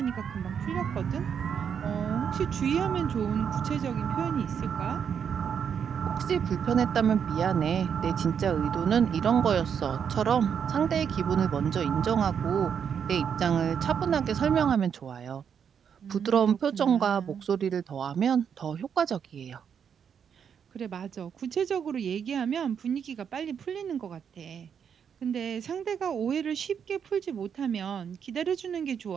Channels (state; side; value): quieter; left; 7.5 dB